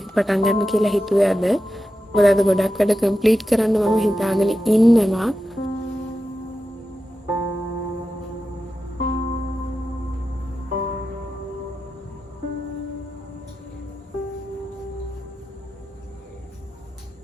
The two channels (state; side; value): normal; both; correlation 0.91